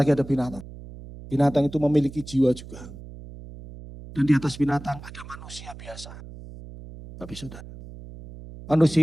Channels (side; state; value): right; noise; hum, 15 dB below the sound